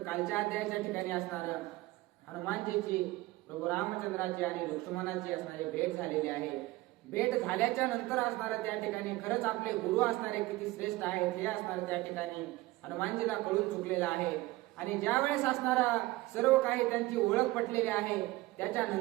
कालच्या अध्यायाच्या ठिकाणी असणार हनुमानजीची प्रभू रामचंद्राची आणि लक्ष्मणाची असणारी भेट झालेली आहे. भेट झाल्याच्या नंतर असणारं त्या ठिकाणी खरंच आपले गुरु असणारे किती श्रेष्ठ आहेत हे असणारं त्या ठिकाणी हनुमानजीला कळून चुकलेलं आहे. आणि ज्या वेळेस असणारा सर्व काही त्यांची ओळख पटलेली आहे,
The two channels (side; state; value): left; quieter; 19.1 dB